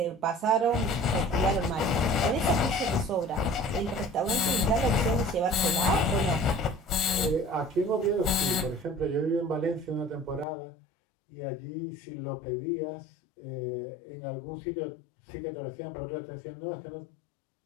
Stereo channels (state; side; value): drops out; right; at 10.5 s